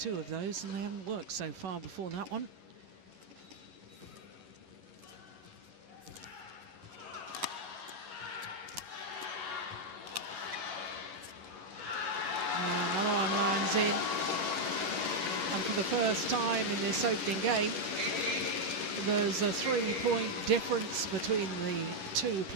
of those and they haven't worked so far before that one. Another one lands in. And for the first time in this opening game, there's a 3-point difference between the 2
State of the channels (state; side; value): late; left; 11 ms